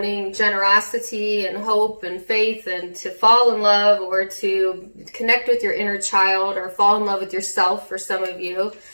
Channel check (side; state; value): both; inverted; correlation -1.00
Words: generosity and hope and faith and to fall in love or to connect with your inner child or fall in love with yourself for some of you.